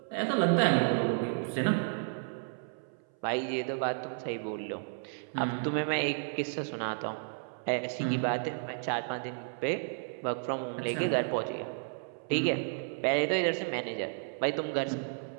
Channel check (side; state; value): left; silent; 56 dB below the other